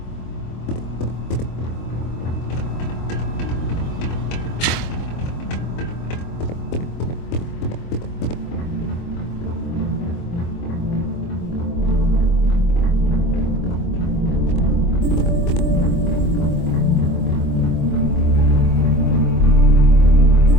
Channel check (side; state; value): right; late; 24 ms